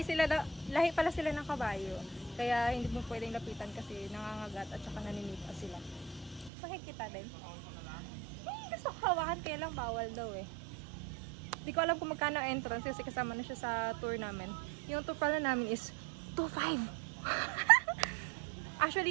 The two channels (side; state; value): left; drops out; at 6.5 s